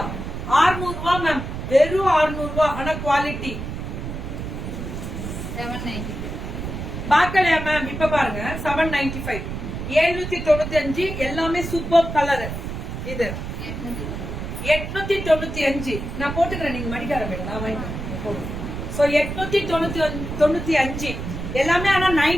600 ரூபாய் மேம், வெறும் 600 ரூபாய். ஆனா குவாலிட்டி 790. பாக்கலையா மேம்? இப்ப பாருங்க 795, 795 எல்லாமே சூப்பர் கலர். இது 895 நான் போட்டுக்கிறேன், நீங்க மடிக்கார மேடம் நான் வாங்கிக்கிறேன். சோ 895 எல்லாமே. ஆனா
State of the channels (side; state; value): right; noise; rumble, 6 dB below the sound